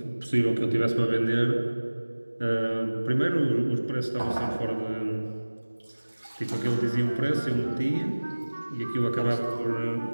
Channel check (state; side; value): inverted; both; correlation -1.00